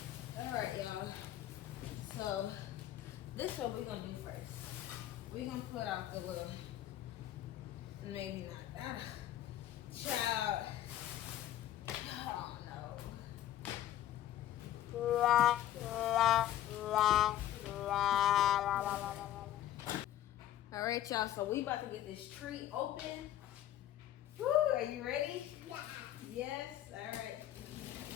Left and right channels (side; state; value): right; quieter; 12.7 dB